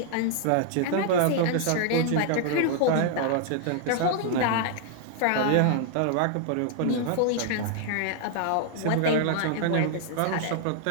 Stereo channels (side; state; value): both; different; correlation 0.00